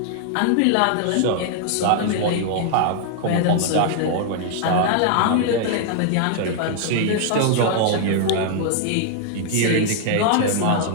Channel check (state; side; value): different; both; correlation 0.00